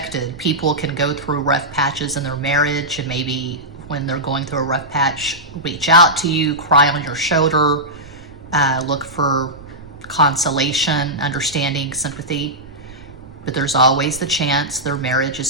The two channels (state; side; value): noise; right; rumble, 20 dB below the sound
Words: People can go through rough patches in their marriage, and maybe when they're going through a rough patch, reach out to you, cry on your shoulder, look for consolation, understanding, sympathy. But there's always the chance their marriage